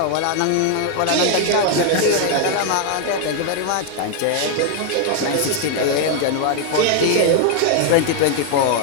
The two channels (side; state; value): both; different; correlation 0.00